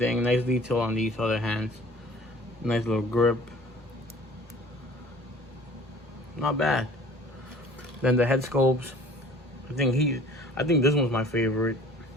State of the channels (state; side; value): normal; both; correlation 0.49